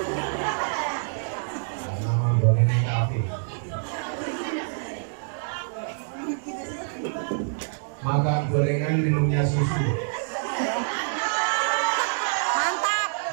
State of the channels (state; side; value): silent; left; digital silence